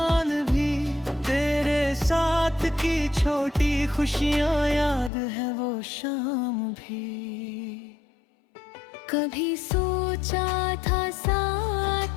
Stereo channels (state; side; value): drops out; right; at 5.1 s